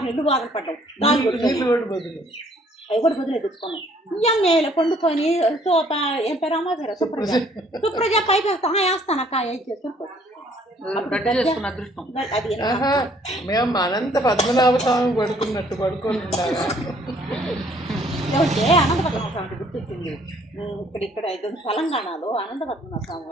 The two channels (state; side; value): normal; both; correlation 0.61